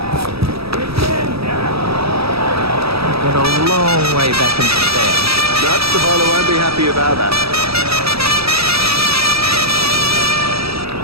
Got a long way back into the stand. No, the bowler won't be happy about that.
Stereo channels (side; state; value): left; late; 0.77 ms